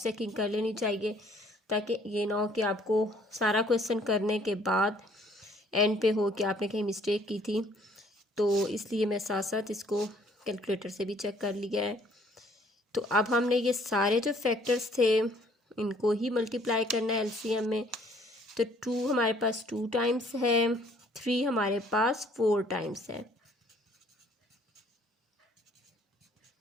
चेकिंग कर लेनी चाहिए, ताकि ये ना हो कि आपको सारा क्वेश्चन करने के बाद एंड पे हो कि आपने कहीं मिस्टेक की थी। तो इसलिए मैं साथ साथ इसको कैलकुलेटर से भी चेक कर लिया है। तो अब हमने ये सारे जो फैक्टर्स थे इनको ही मल्टीप्लाई करना है एलसीएम में। तो 2 हमारे पास 2 टाइम्स है, 3 हमारे पास 4 टाइम्स है,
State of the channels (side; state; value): both; normal; correlation 0.60